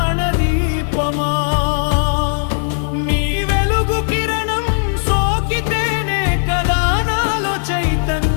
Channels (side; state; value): right; silent; digital silence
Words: నీ వెలుగు కిరణం సోకితేనే కదా నాలో